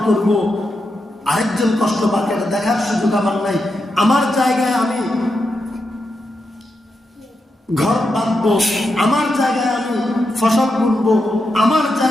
করব, আরেকজন কষ্ট পাবে এটা দেখার সুযোগ আমার নাই। আমার জায়গায় আমি ঘর বাঁধবো, আমার জায়গায় আমি ফসল বুনবো, আমার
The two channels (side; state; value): both; normal; correlation 0.86